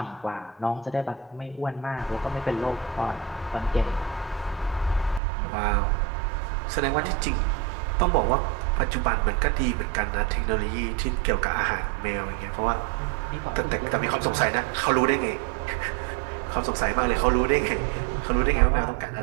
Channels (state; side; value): drops out; left; at 5.2 s